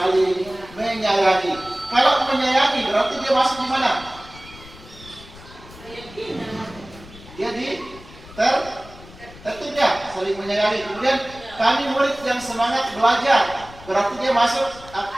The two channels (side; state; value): left; noise; rumble, 19 dB below the sound